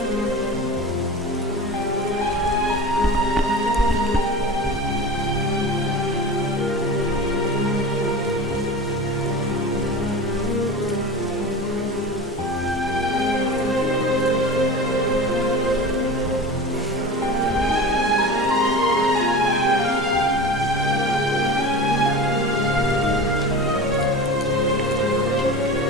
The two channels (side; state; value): both; normal; correlation 0.32